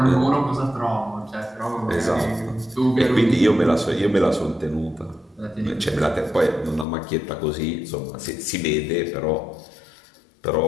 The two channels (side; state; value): right; drops out; at 6.9 s